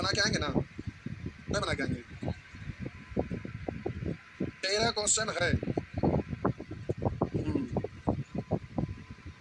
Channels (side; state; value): both; identical; correlation 1.00